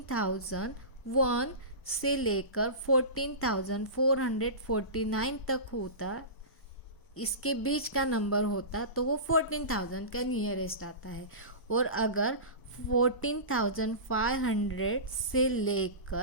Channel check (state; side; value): late; right; 1.0 ms